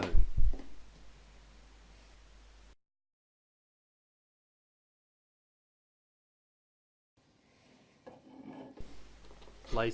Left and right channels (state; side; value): identical; both; correlation 1.00